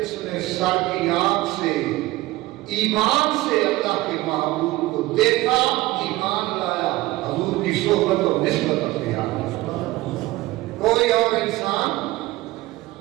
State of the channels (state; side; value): quieter; left; 18.4 dB